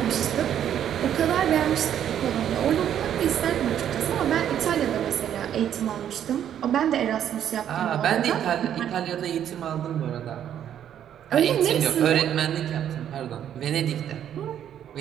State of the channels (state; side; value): quieter; left; 10.0 dB